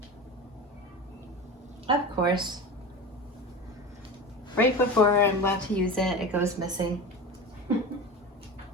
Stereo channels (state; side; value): normal; both; correlation 0.28